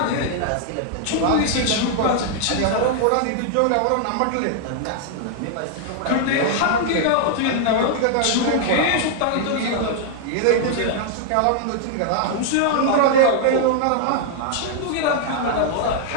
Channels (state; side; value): different; both; correlation 0.00